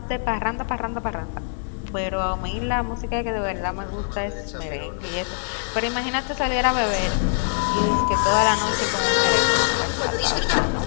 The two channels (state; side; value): silent; right; digital silence